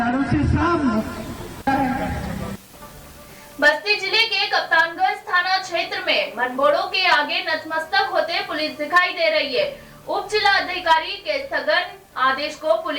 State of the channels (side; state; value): both; identical; correlation 1.00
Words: से, सब बस्ती जिले के कप्तानगंज थाना क्षेत्र में मनबोड़ो के आगे नतमस्तक होते पुलिस दिखाई दे रही है। उप जिला अधिकारी के स्थगन आदेश को